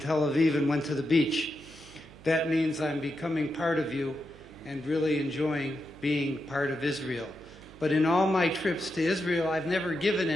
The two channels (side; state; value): right; noise; hum, 20 dB below the sound